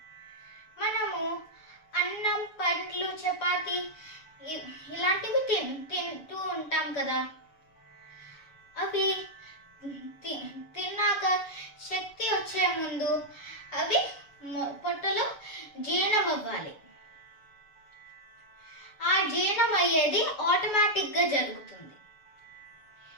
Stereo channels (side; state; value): right; late; 7.2 ms